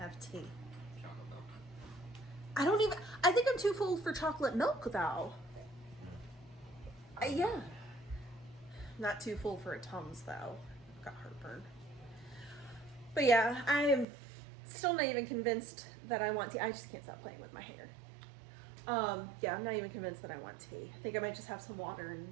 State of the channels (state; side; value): drops out; left; at 14.1 s